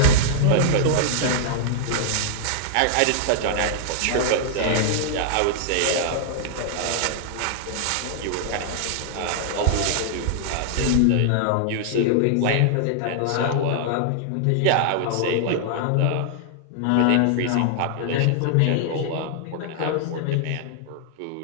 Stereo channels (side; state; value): both; different; correlation -0.01